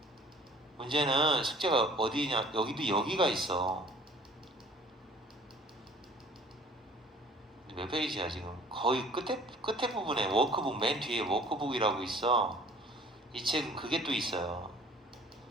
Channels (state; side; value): normal; both; correlation 0.51